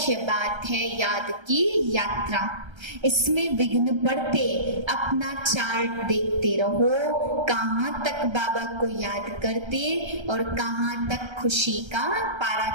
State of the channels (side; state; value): left; late; 1.3 ms